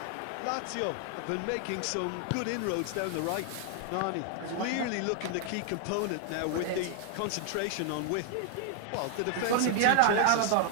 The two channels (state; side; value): different; both; correlation 0.00